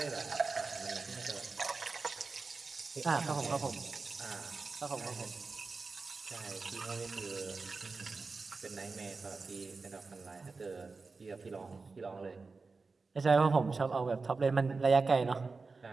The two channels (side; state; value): left; quieter; 4.2 dB